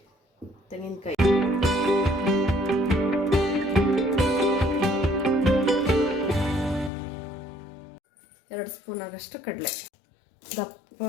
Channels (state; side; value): drops out; right; at 6.9 s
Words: ತೆಂಗಿನಕಾಯಿ, ಎರಡು ಸ್ಪೂನ್ ಆಗಷ್ಟು ಕಡಲೆ, ದಪ್ಪ